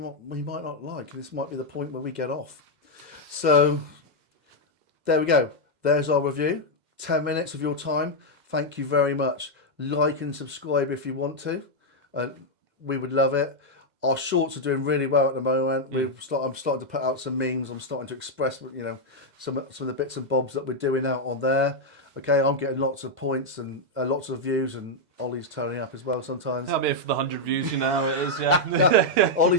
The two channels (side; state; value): left; late; 2.0 ms